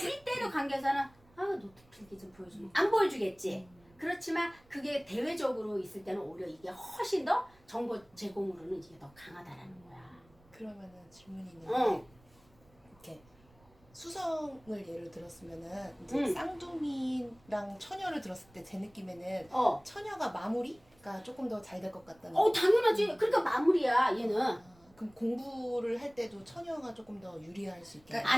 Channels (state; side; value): noise; right; rumble, 29 dB below the sound